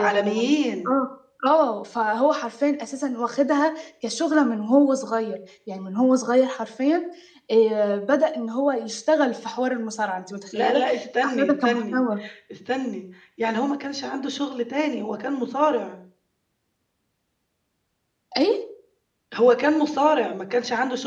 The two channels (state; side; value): identical; both; correlation 1.00